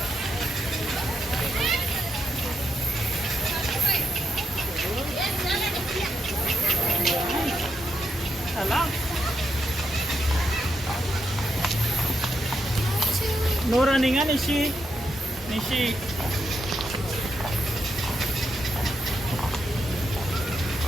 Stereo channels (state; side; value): normal; both; correlation 0.81